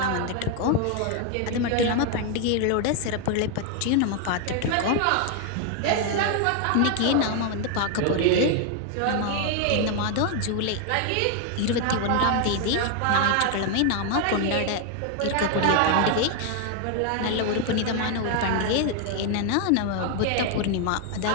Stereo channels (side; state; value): both; different; correlation 0.00